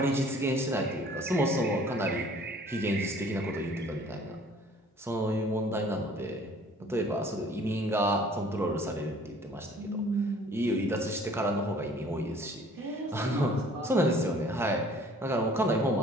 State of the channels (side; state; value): both; normal; correlation 0.54